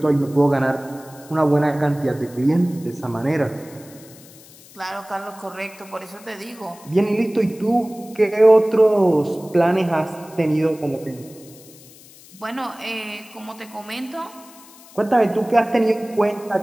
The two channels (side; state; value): left; noise; hiss, 22 dB below the sound